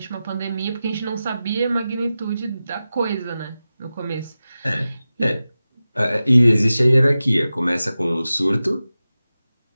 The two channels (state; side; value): inverted; both; correlation -0.94